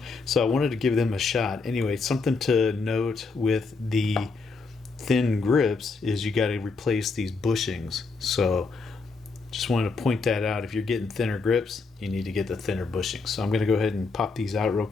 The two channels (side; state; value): right; quieter; 4.3 dB